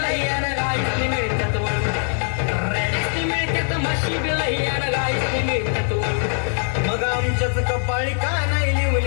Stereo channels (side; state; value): right; silent; 56 dB below the other